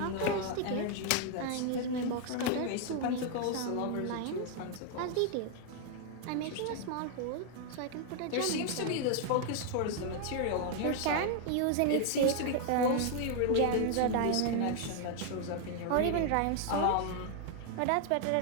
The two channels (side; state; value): both; different; correlation 0.00